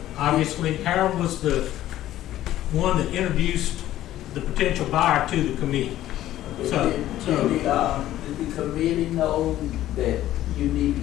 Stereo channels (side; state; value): right; quieter; 13.6 dB